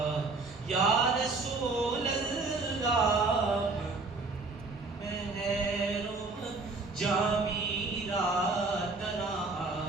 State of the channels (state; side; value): quieter; left; 3.7 dB